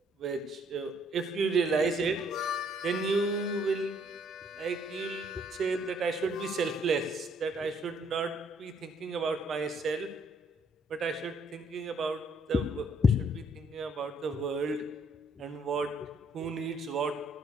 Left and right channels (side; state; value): both; normal; correlation 0.66